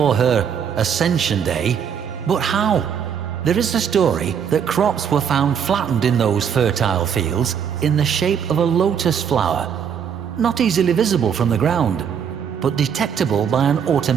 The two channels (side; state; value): left; quieter; 7.8 dB